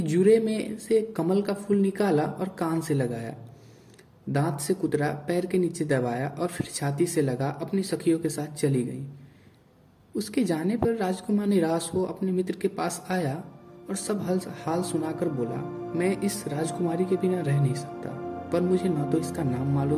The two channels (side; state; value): both; identical; correlation 1.00